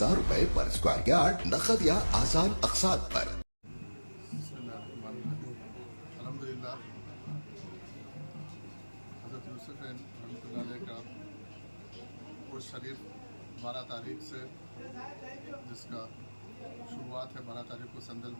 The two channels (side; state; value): both; inverted; correlation -1.00